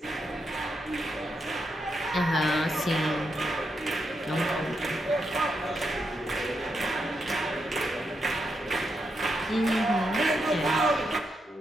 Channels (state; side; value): normal; both; correlation 0.83